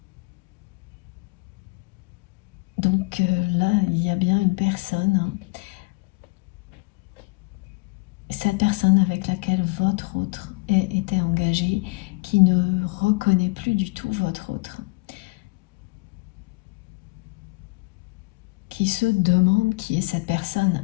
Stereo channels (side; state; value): right; quieter; 26.6 dB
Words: Donc là, il y a bien une personne cette personne avec laquelle votre autre était engagé, qui ne reconnaît plus du tout votre autre, qui se demande qui est cette personne